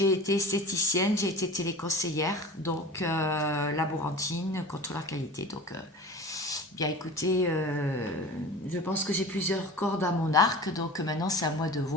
été esthéticienne, j'ai été téléconseillère, donc laborantine, contrôleur qualité. Donc, bien écoutez, je pense que j'ai plusieurs cordes à mon arc, donc maintenant c'est à moi de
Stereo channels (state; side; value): normal; both; correlation 0.37